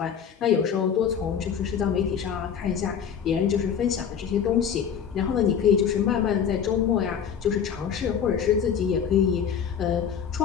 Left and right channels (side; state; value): right; quieter; 7.8 dB